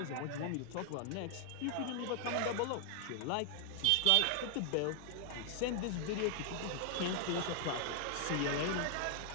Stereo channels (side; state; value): both; different; correlation 0.00